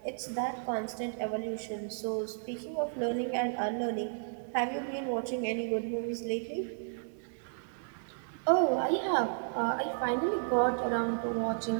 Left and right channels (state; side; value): silent; left; digital silence